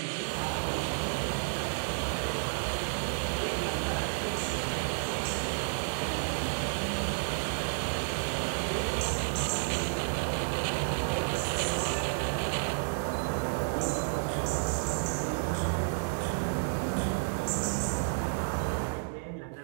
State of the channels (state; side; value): silent; left; 57 dB below the other